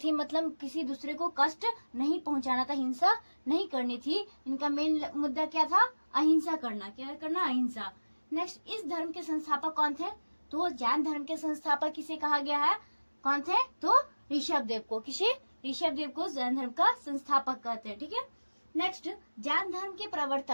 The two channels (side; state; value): both; inverted; correlation -1.00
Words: मतलब किसी दूसरे को कष्ट नहीं पहुंचाना था, हिंसा नहीं करनी थी। इनका मेन मुद्दा क्या था? अहिंसा करना। क्या करना? अहिंसा। नेक्स्ट, इस धर्म के संस्थापक कौन थे? तो जैन धर्म के संस्थापक किसे कहा गया है? कौन थे? तो ऋषभ देव को। किसे? ऋषभ देव को जैन धर्म का संस्थापक कहते हैं। ठीक है, नेक्स्ट, जैन धर्म के